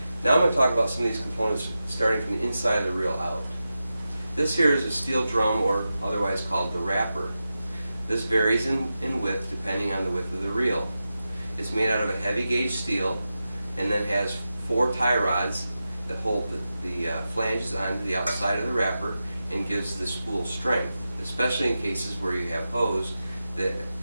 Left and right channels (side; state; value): both; inverted; correlation -0.92